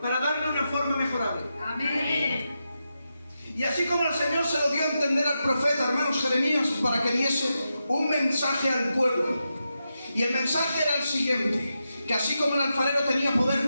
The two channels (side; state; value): both; inverted; correlation -0.88